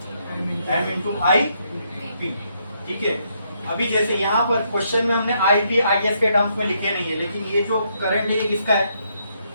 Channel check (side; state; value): both; inverted; correlation -0.75